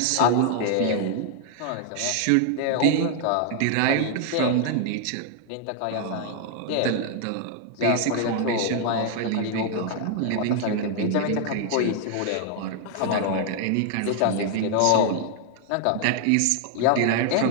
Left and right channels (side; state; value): both; different; correlation 0.00